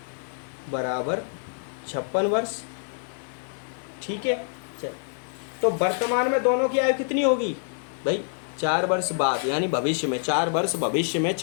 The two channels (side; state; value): right; silent; digital silence